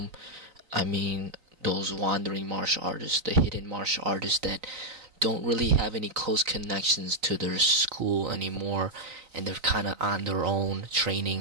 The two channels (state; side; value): late; left; 3.9 ms